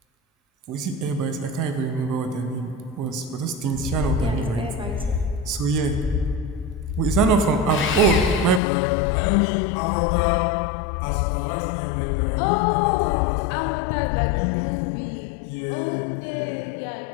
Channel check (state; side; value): drops out; right; at 8.6 s